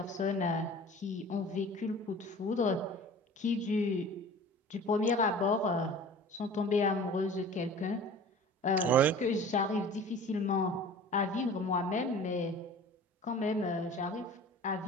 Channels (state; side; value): normal; both; correlation 0.42